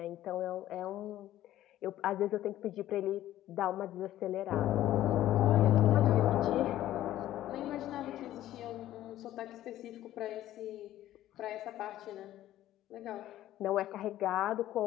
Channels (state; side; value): quieter; right; 13.6 dB